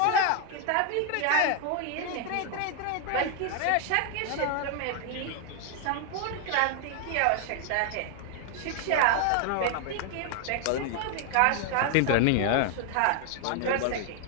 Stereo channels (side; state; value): both; different; correlation 0.00